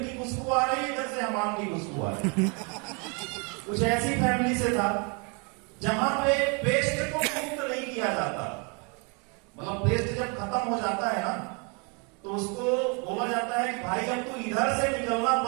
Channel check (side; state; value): left; quieter; 33.8 dB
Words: की खुशबू आ रही है, इधर से हमाम की खुशबू आ रही है। कुछ ऐसी फैमिली से था जहां पे पेस्ट को मुक्त नहीं किया जाता। मतलब पेस्ट जब खत्म हो जाता है ना तो उसको बोला जाता है कि भाई अब तू इधर से निकलना